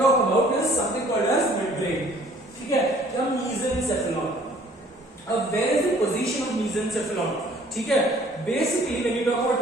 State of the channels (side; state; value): both; normal; correlation 0.56